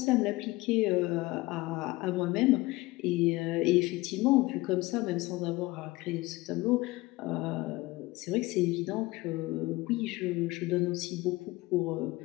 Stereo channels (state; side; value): quieter; right; 20.8 dB